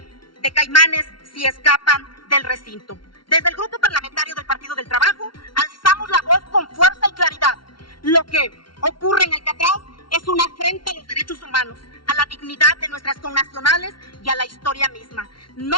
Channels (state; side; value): late; right; 0.73 ms